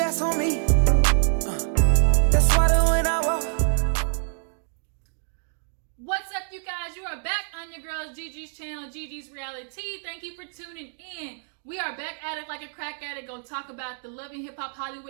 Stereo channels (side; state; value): left; silent; digital silence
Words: on me. That's why when I walk. What's up, you guys? You are back on your girl's Gigi's channel, Gigi's Reality. Thank you for tuning in. We are back at it like a crack addict. Gonna talk about the Love and Hiphop